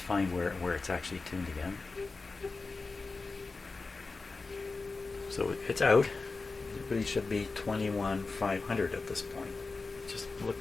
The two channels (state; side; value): quieter; right; 3.9 dB